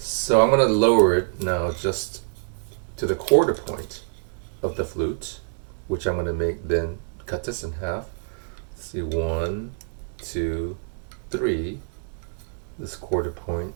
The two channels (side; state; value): left; silent; digital silence